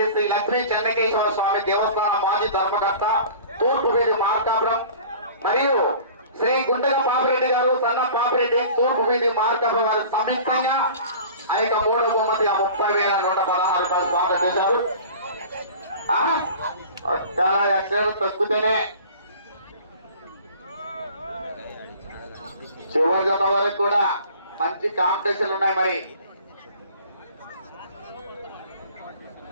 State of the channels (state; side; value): inverted; both; correlation -0.43